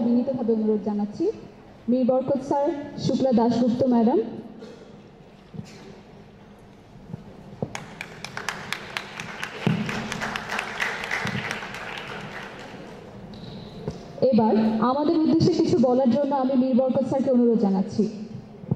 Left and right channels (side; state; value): both; identical; correlation 1.00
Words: বিনীতভাবে অনুরোধ জানাচ্ছি। মীর বরকত স্যার, শুক্লা দাশগুপ্ত ম্যাডাম, এবার আমাদের উদ্দেশ্যে কিছু বলার জন্য আমি মীর বরকত স্যারকে অনুরোধ জানাচ্ছি।